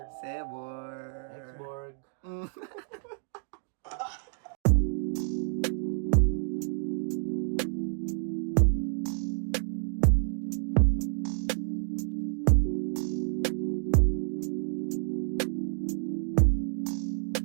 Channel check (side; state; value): left; silent; digital silence